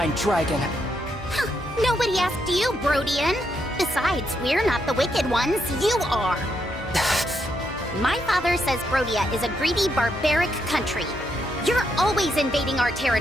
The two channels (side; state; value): both; normal; correlation 0.79